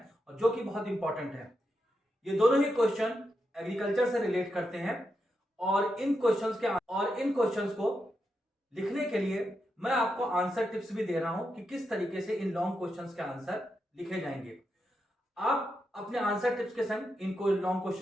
और जो कि बहुत इंपॉर्टेंट है। ये दोनों ही क्वेश्चन एग्रीकल्चर से रिलेट करते हैं और इन क्वेश्चंस को लिखने के लिए मैं आपको आंसर टिप्स भी दे रहा हूं कि किस तरीके से इन लॉन्ग क्वेश्चंस के आंसर लिखे जाएंगे। आप अपने आंसर टिप्स के संग इनको लॉन्ग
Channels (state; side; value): normal; both; correlation 0.85